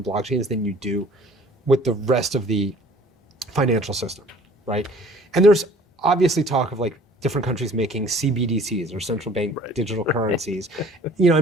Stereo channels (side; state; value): both; normal; correlation 0.52